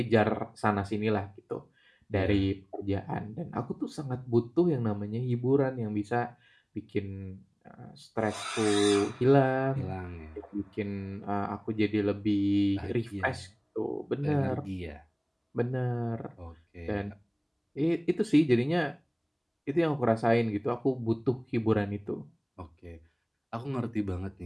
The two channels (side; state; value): both; identical; correlation 1.00